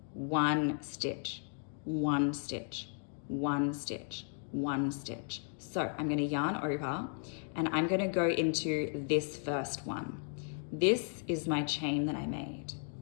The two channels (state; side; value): silent; right; 54 dB below the other